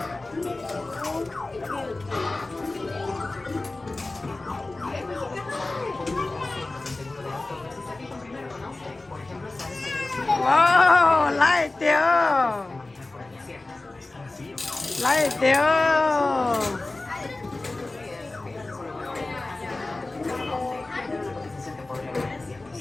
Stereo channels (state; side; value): quieter; right; 3.1 dB